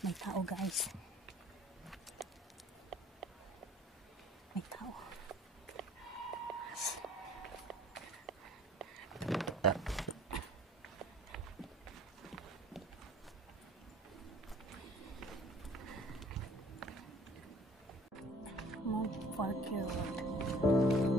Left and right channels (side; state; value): both; normal; correlation 0.51